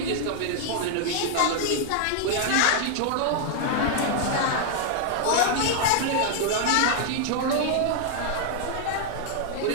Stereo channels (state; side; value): different; both; correlation -0.01